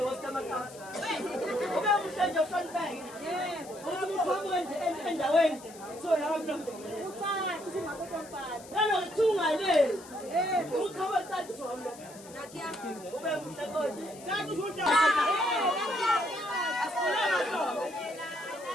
wasikamakati ube muhle nje uhlonipheke ukuthi uqhamuke nje endaweni kuthiwa nanokuthungale uqhamuke cathi zomlo ube muhle kodwa asifune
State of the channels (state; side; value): noise; left; hiss, 19 dB below the sound